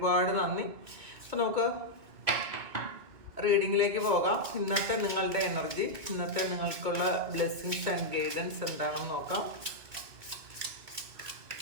നന്ദി. അപ്പോൾ നമുക്ക് റീഡിങ്ങിലേക്ക് പോകാം. ഇന്നത്തെ നിങ്ങളുടെ എനർജി, ഇന്നത്തെ നിങ്ങൾക്കുള്ള ബ്ലെസ്സിങ്സ് ആൻഡ് ഗൈഡൻസ് എന്താണെന്ന് നോക്കാം.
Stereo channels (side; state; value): left; late; 2.4 ms